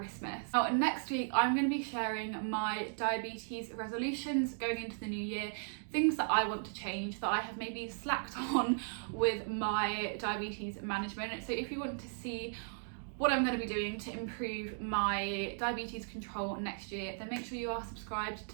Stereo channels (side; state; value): left; silent; digital silence